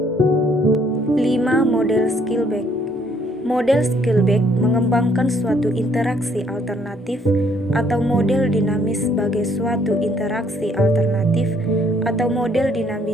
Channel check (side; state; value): both; normal; correlation 0.65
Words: Model Skillback. Model Skillback mengembangkan suatu interaksi alternatif atau model dinamis sebagai suatu interaksi alternatif atau model